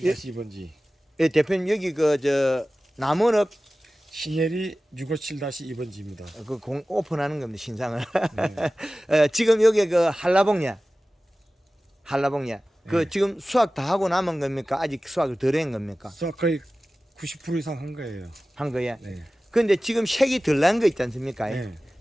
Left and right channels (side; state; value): both; normal; correlation 0.96